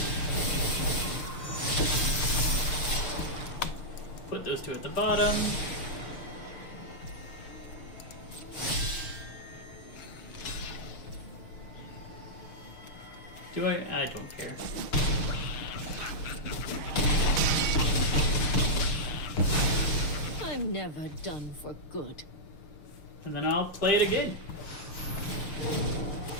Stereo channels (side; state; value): right; late; 6.7 ms